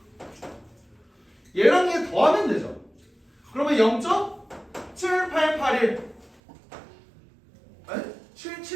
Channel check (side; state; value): left; drops out; at 6.4 s